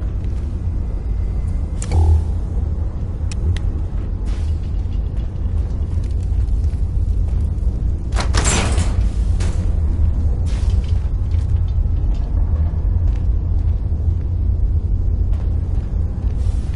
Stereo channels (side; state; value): both; identical; correlation 1.00